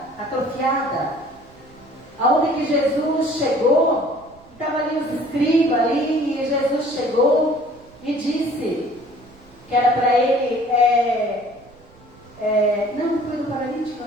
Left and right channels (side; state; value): right; noise; rumble, 26 dB below the sound